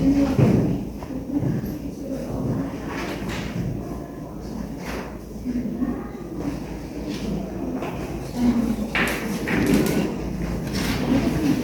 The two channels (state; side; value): identical; both; correlation 1.00